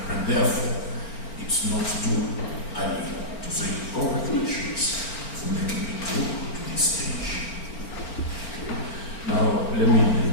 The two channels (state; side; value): late; right; 4.4 ms